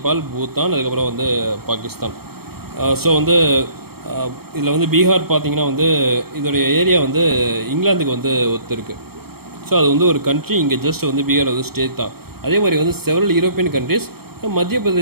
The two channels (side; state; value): left; late; 0.95 ms